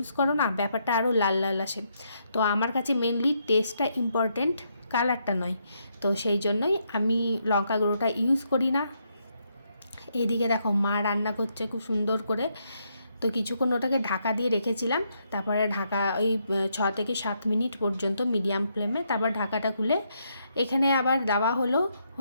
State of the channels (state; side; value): inverted; both; correlation -0.77